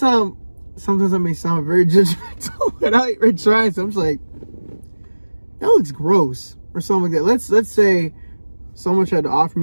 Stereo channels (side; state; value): both; inverted; correlation -1.00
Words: Sometimes I may sound very judgmental without even trying. So I'm just like, that looks gross or something like that. Let's say someone tried to offer